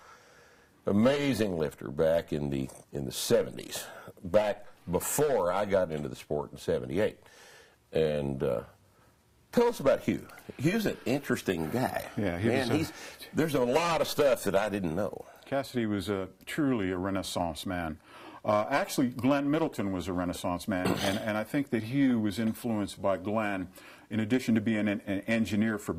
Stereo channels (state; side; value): identical; both; correlation 1.00